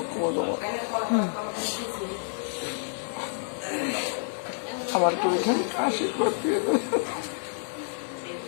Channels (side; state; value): right; silent; digital silence